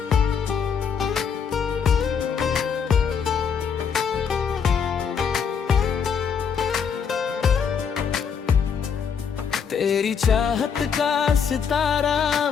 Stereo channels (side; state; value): right; quieter; 6.8 dB